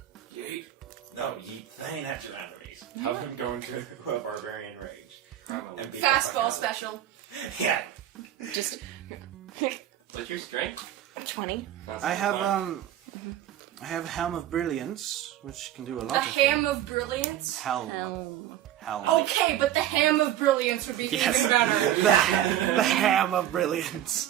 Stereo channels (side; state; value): left; quieter; 11.9 dB